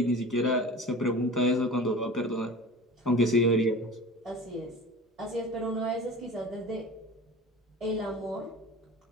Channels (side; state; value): both; normal; correlation 0.37